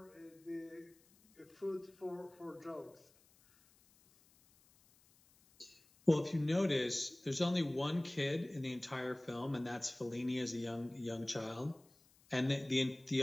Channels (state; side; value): noise; left; hiss, 30 dB below the sound